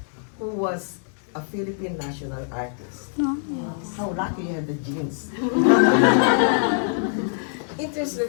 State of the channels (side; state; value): right; silent; digital silence